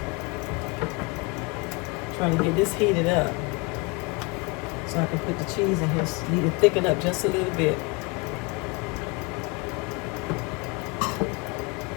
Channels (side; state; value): right; quieter; 28.0 dB